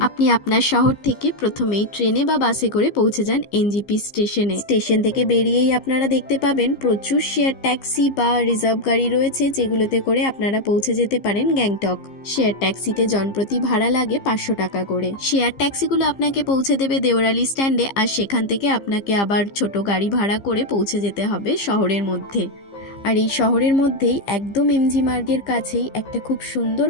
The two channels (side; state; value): right; late; 15 ms